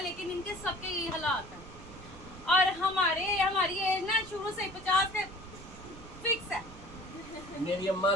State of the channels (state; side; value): noise; right; rumble, 17 dB below the sound